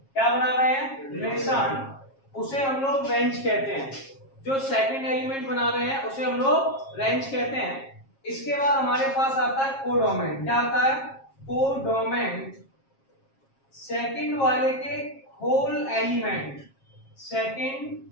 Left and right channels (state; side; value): late; right; 7.4 ms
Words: क्या बना रहे हैं, रिलेशन, उसे हम लोग रेंज कहते हैं। जो सेकंड एलिमेंट बना रहे हैं उसे हम लोग रेंज कहते हैं। इसके बाद हमारे पास आता है कोडोमेन। क्या आता है, कोडोमेन, सेकंड वाले के होल एलिमेंट,